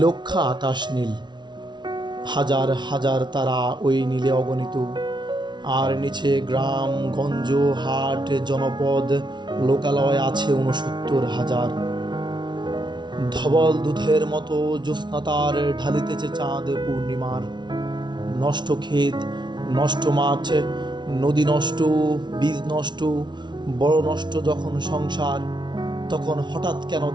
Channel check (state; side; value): late; left; 0.21 ms